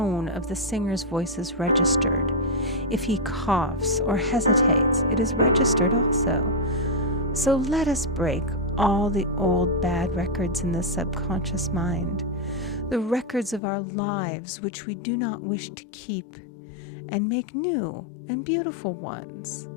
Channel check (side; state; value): right; drops out; at 13.6 s